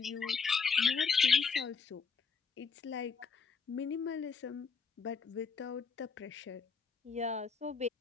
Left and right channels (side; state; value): right; quieter; 5.3 dB